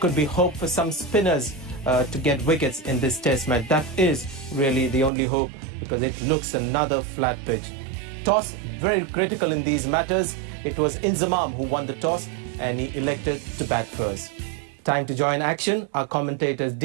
be hope for some spinners to get wickets in this test match. That is really the only hope, because it looks another flat pitch. Toss, very critical in these matters. It was Inzamam who won the toss and he elected to bat first. Time to join action. Our commentators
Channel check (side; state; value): left; drops out; at 5.1 s